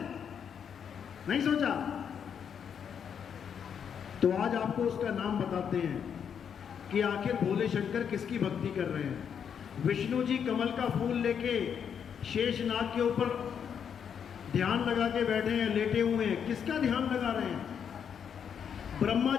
नहीं सोचा? तो आज आपको उसका नाम बताते हैं कि आखिर भोले शंकर किसकी भक्ति कर रहे हैं। विष्णु जी कमल का फूल लेके शेषनाग के ऊपर ध्यान लगा के बैठे हैं, लेटे हुए हैं। किसका ध्यान लगा रहे हैं? ब्रह्मा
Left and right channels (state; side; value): quieter; right; 7.7 dB